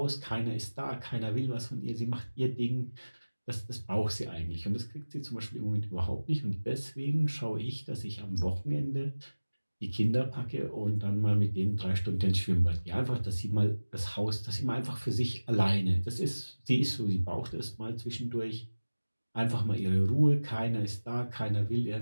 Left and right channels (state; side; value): inverted; both; correlation -1.00